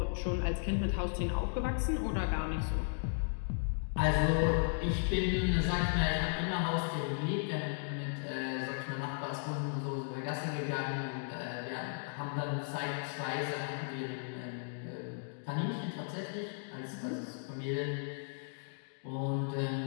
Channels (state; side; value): silent; right; digital silence